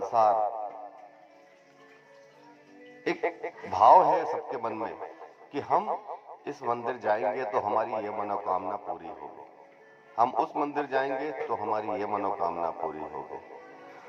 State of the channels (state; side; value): identical; both; correlation 1.00